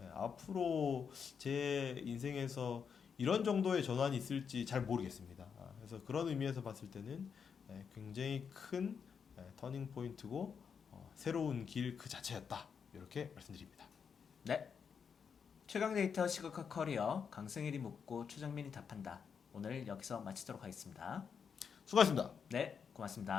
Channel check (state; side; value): quieter; right; 6.6 dB